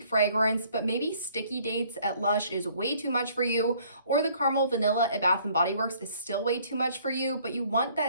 fragrance, but maybe Sticky Dates at Lush is way too much for you, or the Caramel Vanilla at Bath & Body Works is still way too much for you, but you want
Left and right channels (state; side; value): inverted; both; correlation -0.60